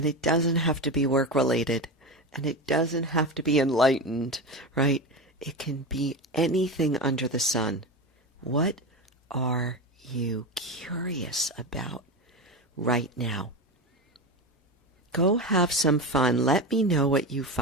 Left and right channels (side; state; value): both; normal; correlation 0.21